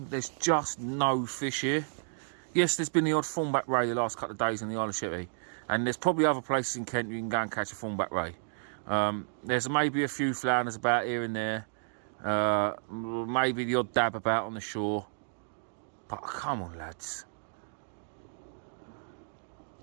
There's just no fish here. Yes, there's been the odd thornback ray the last couple of days in the Isle of Sheppey, and there's probably other places in Kent you can go and catch a thornback ray. There's maybe a few flounders about here and there, maybe the odd dab about on the shore. But come on, lads.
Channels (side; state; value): left; silent; digital silence